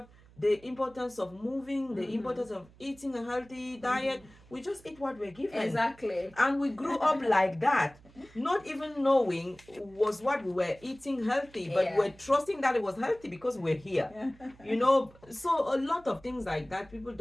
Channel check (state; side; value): noise; right; hum, 25 dB below the sound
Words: the importance of moving, the importance of eating a healthy diet. We just eat what we're given. Exactly. And we grew up like that, not even knowing was what we were eating healthy, but Yeah. we're trusting that it was healthy because we're here. So a lot of things like that, people